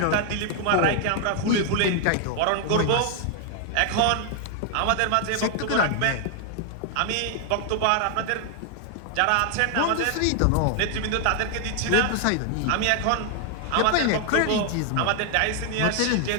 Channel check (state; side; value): different; both; correlation 0.00